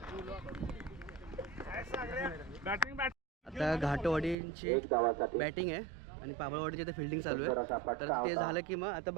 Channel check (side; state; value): left; drops out; at 4.4 s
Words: आता घाटवाडींची एक धावासाठी बॅटिंग आहे आणि पाबळवाडीची आता फिल्डिंग चालू आहे. तर ते झालं की मग आता